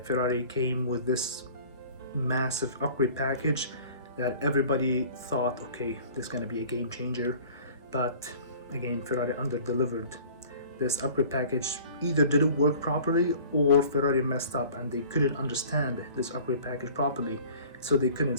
came with this massive upgrade package that everybody thought, okay, this is going to be a game changer, but again, Ferrari under-delivered. This upgrade package either didn't work properly or Ferrari messed up and they couldn't understand this upgrade package properly, so they couldn't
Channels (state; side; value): inverted; both; correlation -0.47